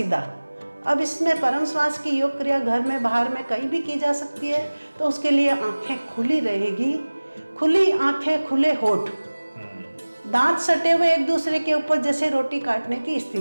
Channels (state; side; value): inverted; both; correlation -1.00